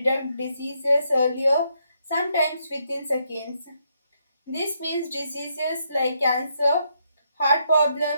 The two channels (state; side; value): inverted; both; correlation -0.76